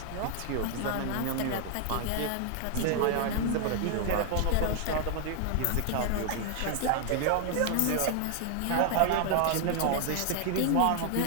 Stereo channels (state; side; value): different; both; correlation 0.00